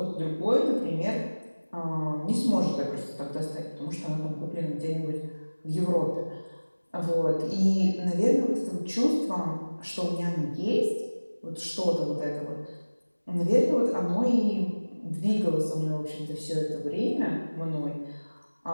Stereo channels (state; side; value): inverted; both; correlation -1.00